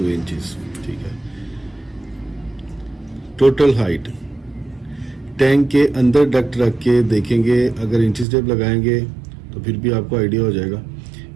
इंचेस, ठीक है। टोटल हाइट टैंक के अंदर डक्ट रख के देखेंगे, अगर इंचिस टेप लगाएंगे तो फिर भी आपको आइडिया हो जाएगा।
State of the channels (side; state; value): left; drops out; at 8.2 s